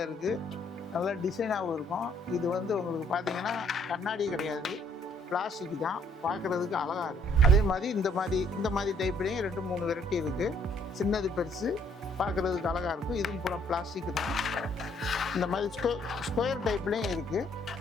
இருக்குது, நல்லா டிசைனாகவும் இருக்கும். இது வந்து உங்களுக்கு பார்த்தீங்கன்னா கண்ணாடி கிடையாது, பிளாஸ்டிக் தான், பார்க்குறதுக்கு அழகாக இருக்கும். அதே மாதிரி இந்த மாதிரி டைப்லேயும் 2-3 வெரைட்டி இருக்குது. சின்னது பெருசு, பார்க்குறதுக்கு அழகாக இருக்கும். இதுவும் பூரா பிளாஸ்டிக் தான். இந்த மாதிரி ஸ்கொயர் டைப்லேயும் இருக்குது.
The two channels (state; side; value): normal; both; correlation 0.65